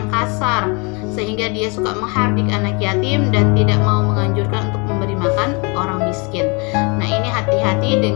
kasar, sehingga dia suka menghardik anak yatim dan tidak mau menganjurkan untuk memberi makan orang miskin. Nah, ini hati-hati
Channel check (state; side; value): quieter; right; 31.5 dB